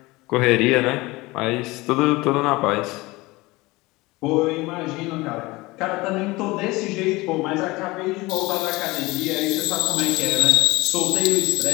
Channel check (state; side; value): quieter; right; 21.8 dB